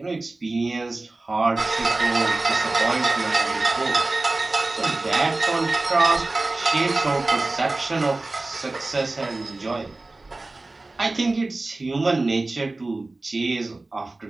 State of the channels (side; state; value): left; quieter; 3.1 dB